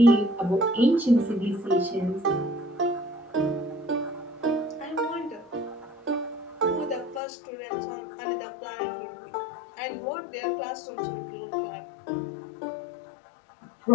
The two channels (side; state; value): right; drops out; at 7.2 s